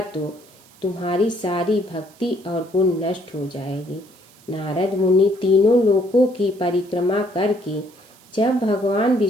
तो तुम्हारी सारी भक्ति और पुण्य नष्ट हो जाएगी। नारद मुनि तीनों लोकों की परिक्रमा करके जब भगवान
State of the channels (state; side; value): noise; right; hiss, 27 dB below the sound